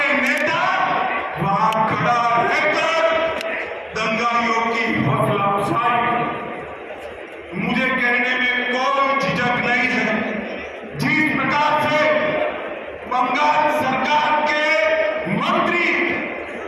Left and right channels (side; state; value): both; identical; correlation 1.00